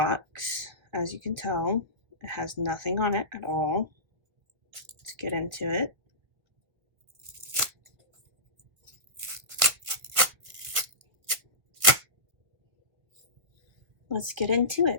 as you can tell. It has nothing on it at all. Let's get into it. Let's get into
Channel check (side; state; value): left; late; 1.7 ms